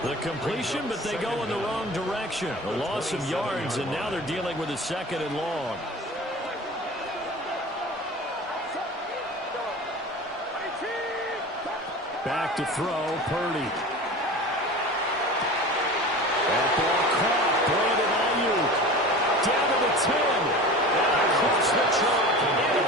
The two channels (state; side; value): normal; both; correlation 0.35